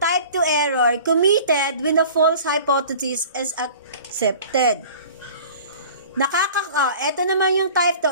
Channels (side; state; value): both; inverted; correlation -0.44